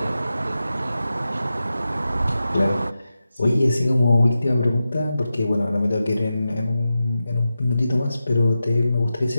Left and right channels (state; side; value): inverted; both; correlation -0.92